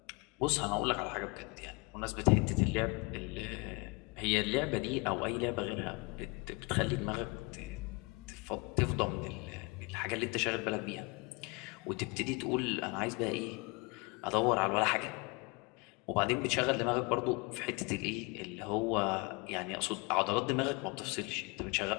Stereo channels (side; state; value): right; quieter; 28.2 dB